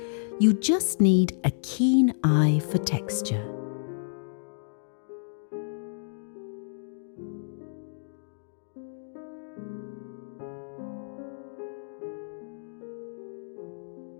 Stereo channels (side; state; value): right; silent; digital silence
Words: You just need a keen eye for texture.